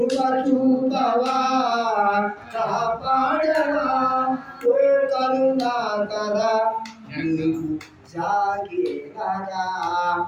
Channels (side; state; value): both; identical; correlation 1.00